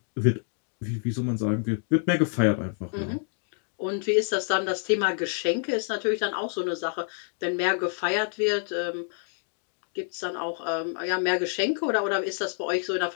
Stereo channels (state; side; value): silent; right; 58 dB below the other